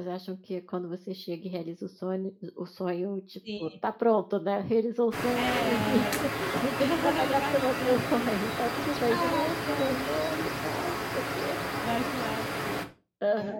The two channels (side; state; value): both; identical; correlation 1.00